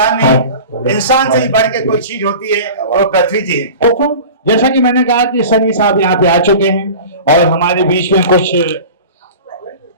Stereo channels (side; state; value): both; inverted; correlation -0.37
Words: नहीं, इंसान से ही बढ़ के कोई चीज होती है, और पृथ्वी जी है। जैसा कि मैंने कहा कि सनी साहब यहाँ पे आ चुके हैं और हमारे बीच में कुछ